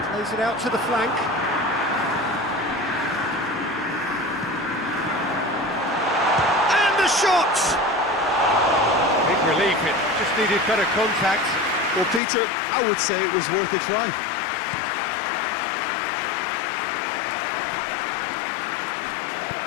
Plays it out to the flank. And the shot! Big relief, it just needed better contact. Well, Peter, I would say it was worth a try.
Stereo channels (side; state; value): right; drops out; at 12.2 s